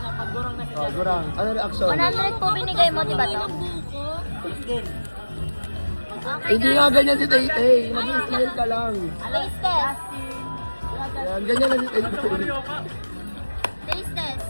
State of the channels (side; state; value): both; inverted; correlation -1.00